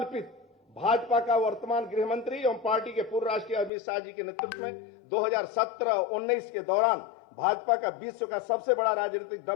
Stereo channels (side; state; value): right; drops out; at 3.7 s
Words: भाजपा का वर्तमान गृह मंत्री एवं पार्टी के पूर्व राष्ट्रीय अमित शाह जी के नेतृत्व में 2017-19 के दौरान भाजपा का विश्व का सबसे बड़ा राजनीतिक